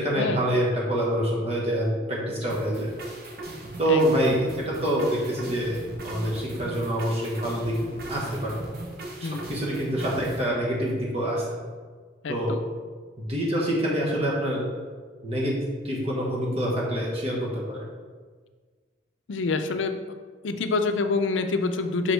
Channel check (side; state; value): both; normal; correlation 0.47